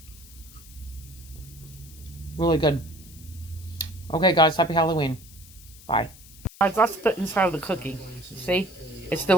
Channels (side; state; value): left; noise; hiss, 20 dB below the sound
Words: Really good. Okay, guys, happy Halloween. Bye. Guys, that's the inside of the cookie. See? It's